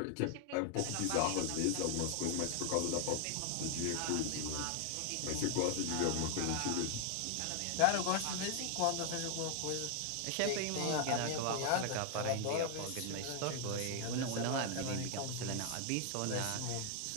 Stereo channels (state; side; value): different; both; correlation 0.00